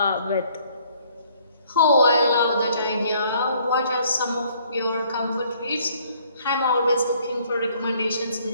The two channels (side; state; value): both; inverted; correlation -0.62